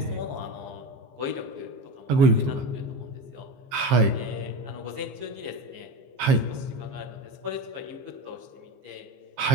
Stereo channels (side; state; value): left; late; 15 ms